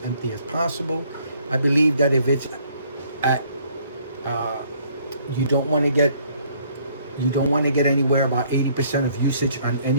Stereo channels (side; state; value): both; inverted; correlation -0.63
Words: empty as possible. I believe that if it's at, you don't want to get anywhere about 80% of usage on